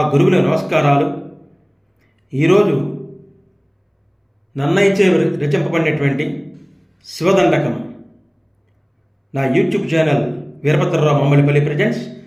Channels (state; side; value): identical; both; correlation 1.00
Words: గురువులకు నమస్కారాలు. ఈరోజు నన్నయ్యచే రచింపబడినటువంటి శివదండకం నా YouTube channel Veerabhadrarao Mammallnipalli presents.